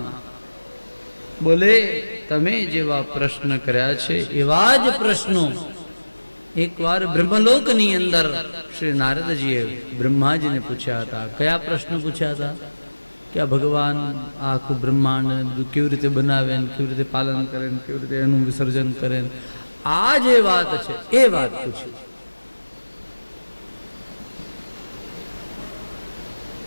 બોલે તમે જેવા પ્રશ્ન કર્યા છે એવા જ પ્રશ્નો એકવાર બ્રહ્મલોકની અંદર શ્રી નારદજીએ બ્રહ્માજીને પૂછ્યા હતા. કયા પ્રશ્નો પૂછ્યા હતા? કે આ ભગવાન આ આખું બ્રહ્માંડ ને બધું કેવી રીતે બનાવે ને કેવી રીતે પાલન કરે ને કેવી રીતે એનું વિસર્જન કરે ને આ જે વાત છે એ વાત પૂછી.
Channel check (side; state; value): both; inverted; correlation -1.00